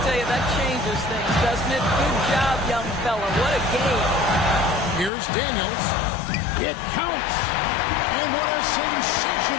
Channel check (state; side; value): drops out; right; at 5.1 s